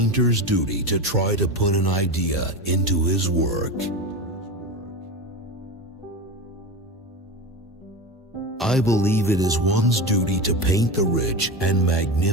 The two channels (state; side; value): normal; both; correlation 0.24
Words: duty to try to put an idea into his work. I believe it is one's duty to paint the rich and